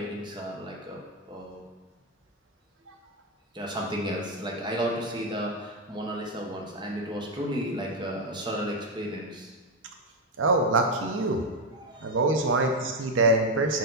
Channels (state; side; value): normal; both; correlation 0.06